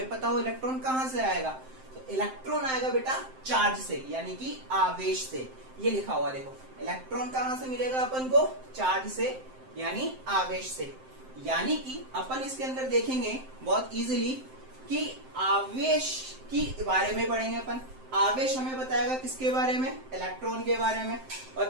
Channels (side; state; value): left; late; 7.7 ms